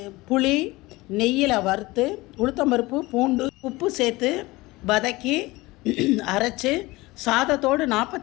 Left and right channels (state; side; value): quieter; right; 21.0 dB